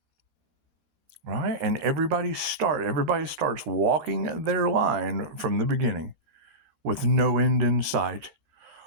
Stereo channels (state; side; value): late; left; 14 ms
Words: Right? And everybody starts walking their line from the beginning with no end in sight.